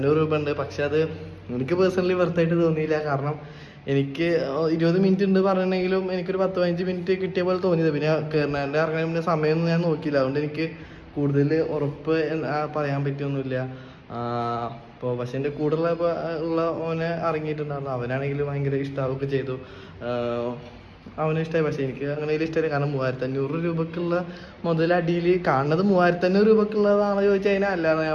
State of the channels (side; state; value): both; identical; correlation 1.00